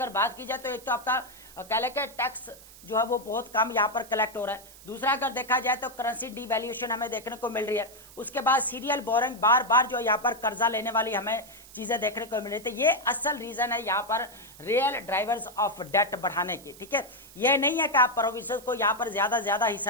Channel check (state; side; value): noise; right; hiss, 20 dB below the sound